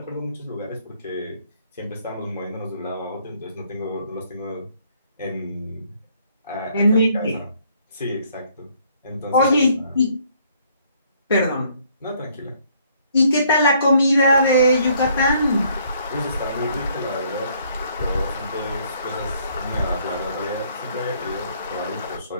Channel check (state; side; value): inverted; both; correlation -0.65